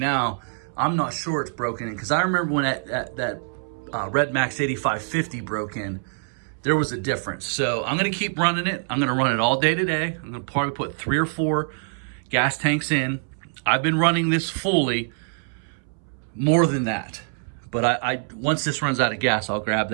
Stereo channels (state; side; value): silent; left; 62 dB below the other